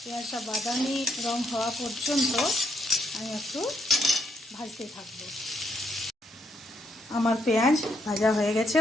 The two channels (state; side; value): normal; both; correlation 0.75